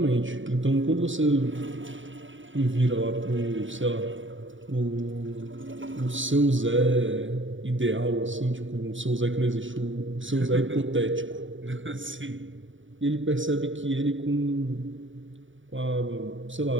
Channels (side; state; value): left; late; 0.56 ms